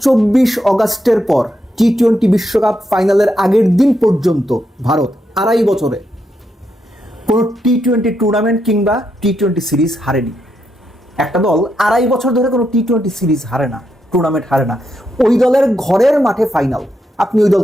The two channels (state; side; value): normal; both; correlation 0.81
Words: অগাস্টের পর টি-20 বিশ্বকাপ ফাইনালের আগের দিন পর্যন্ত ভারত 2.5 বছরে কোনো টি-20 টুর্নামেন্ট কিংবা টি-20 সিরিজ হারেনি। একটা দল 2.5 বছর ধরে কোনো টি-20 সিরিজ হারে না, টুর্নামেন্ট হারে না। ওই দলের ঘরের মাঠে ফাইনাল, আপনি ওই